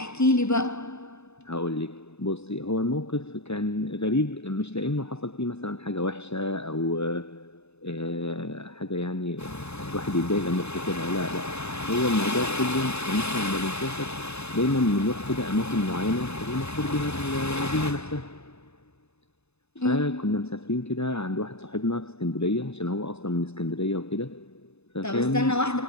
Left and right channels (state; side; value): late; right; 0.80 ms